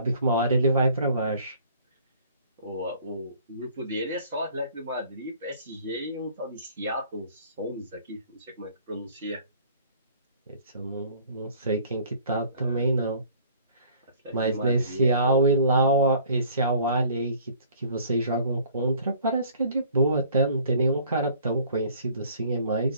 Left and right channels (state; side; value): inverted; both; correlation -0.54